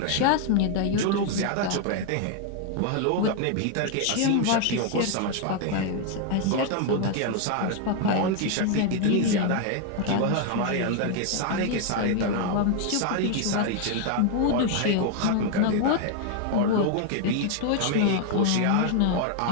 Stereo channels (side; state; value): both; different; correlation 0.01